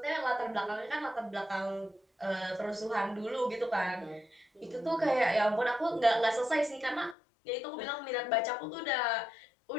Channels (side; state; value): right; drops out; at 7.2 s